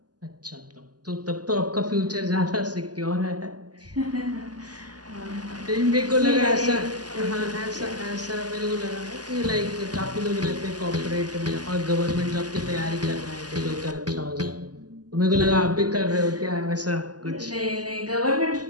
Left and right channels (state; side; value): late; left; 0.69 ms